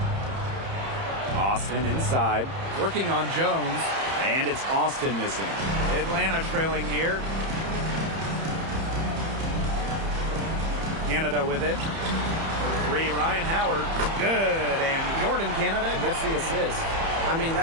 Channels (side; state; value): left; late; 30 ms